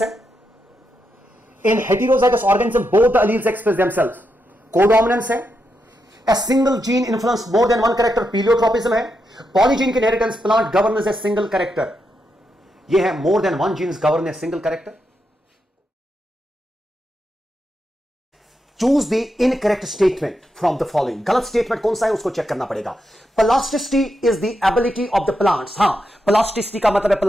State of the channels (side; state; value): both; normal; correlation 0.84